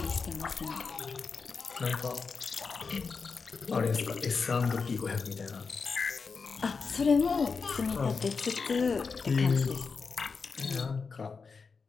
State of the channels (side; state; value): right; quieter; 5.0 dB